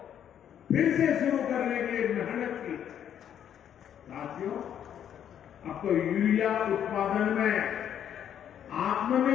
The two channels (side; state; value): right; quieter; 9.6 dB